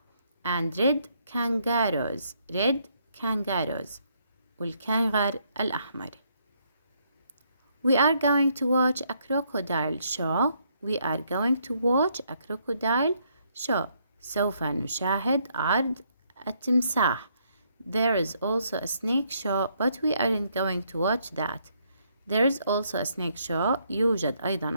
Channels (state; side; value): inverted; both; correlation -0.71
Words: and red kangaroos والكنغر الأحمر. We are going to watch a crocodile show. سوف نشاهد عرض التمساح. There is also a snake show, but we aren't going to watch that. There is also a snake show. يوجد